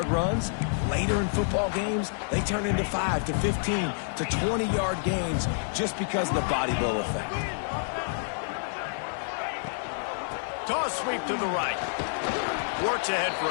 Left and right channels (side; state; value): right; silent; digital silence